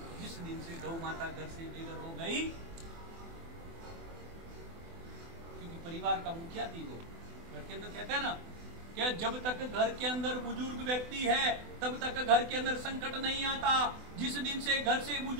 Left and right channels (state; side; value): late; left; 24 ms